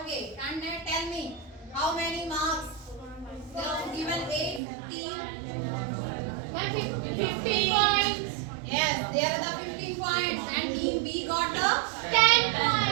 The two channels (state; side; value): drops out; left; at 4.6 s